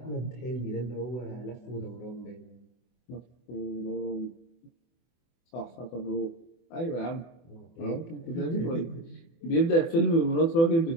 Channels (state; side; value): late; right; 24 ms